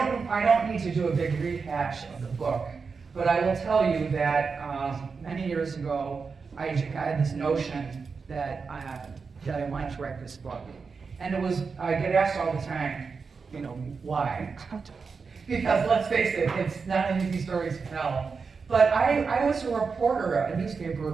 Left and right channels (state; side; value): quieter; left; 5.1 dB